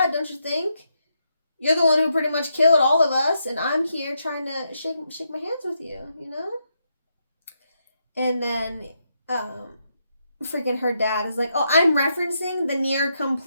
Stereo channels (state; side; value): inverted; both; correlation -0.81